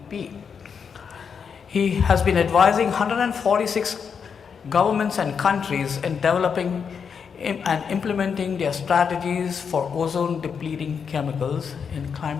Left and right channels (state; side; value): quieter; right; 6.5 dB